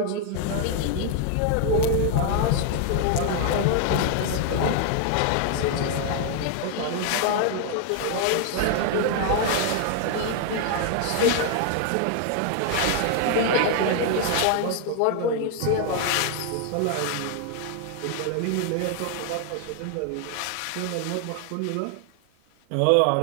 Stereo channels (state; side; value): different; both; correlation 0.00